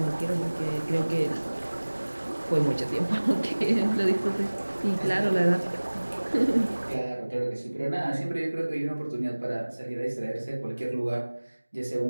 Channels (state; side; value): inverted; both; correlation -1.00